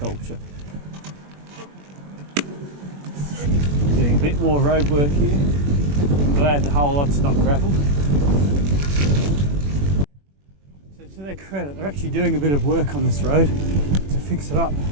Doing a bit more road work here. I'm glad the whole lot's not gravel. So to their credit, they're actually doing a bit of work on this road to fix it up.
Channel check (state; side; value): late; left; 21 ms